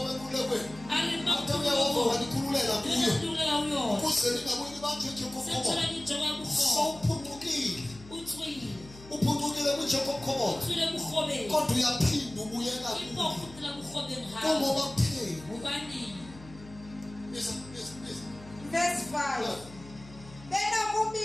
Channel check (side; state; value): left; noise; hum, 19 dB below the sound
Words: uphundukile kuJacob kodwa uyaphinda ubuyela kungoba kutheni verse 5